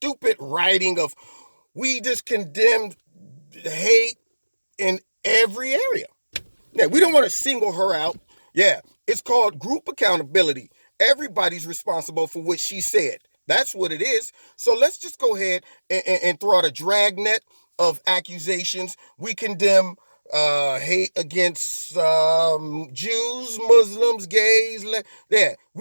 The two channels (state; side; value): inverted; both; correlation -1.00